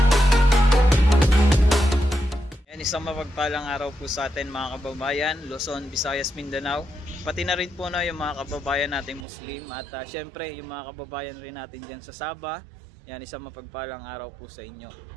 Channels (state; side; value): drops out; left; at 9.2 s